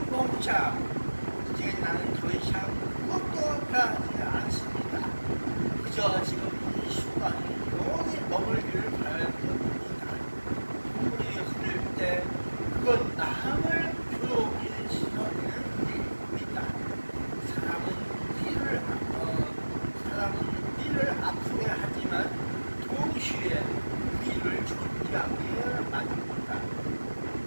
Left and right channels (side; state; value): both; inverted; correlation -1.00